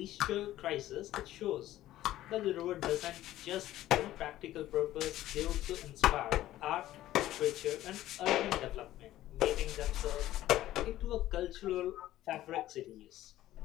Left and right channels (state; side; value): quieter; right; 14.4 dB